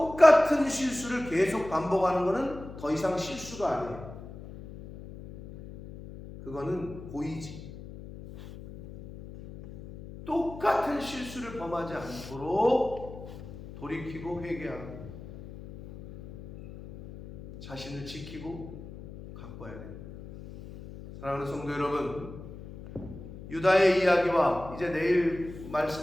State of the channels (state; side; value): noise; left; hum, 14 dB below the sound